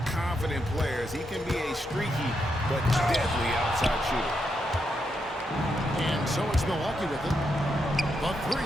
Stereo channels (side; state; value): both; normal; correlation 0.82